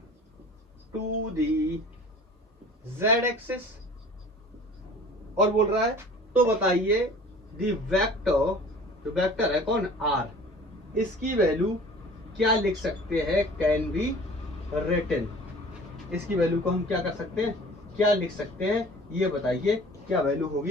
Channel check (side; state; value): both; normal; correlation 0.45